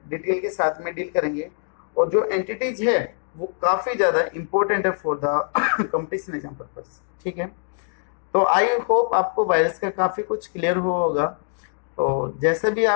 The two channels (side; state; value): right; silent; digital silence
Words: डिटेल के साथ में डील करेंगे, और जो एंटिटीज है वो काफी ज्यादा इंपॉर्टेंट है for the competition exam purpose, ठीक है। तो आई होप आपको वायरस का काफी कुछ क्लियर हुआ होगा। तो जैसा भी